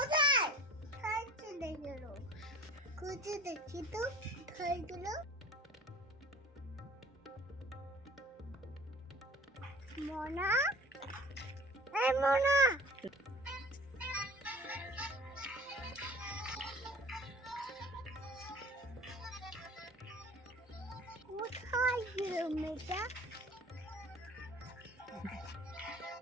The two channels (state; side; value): normal; both; correlation 0.43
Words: চলে গেল? খুঁজে দেখি তো কোথায় গেল। মোনা, এই মোনা, কোথায় গেল মেয়েটা?